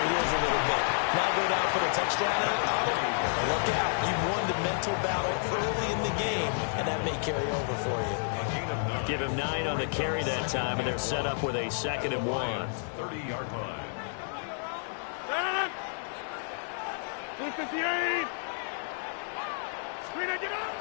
heels a little bit. Now go down for the touchdown on it. Look out. You've won the mental battle early in the game, and that may carry over for you. Give him 9 on the carry that time, and they're set up with a 2nd and 1. 30-yard line. 58.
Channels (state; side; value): silent; right; digital silence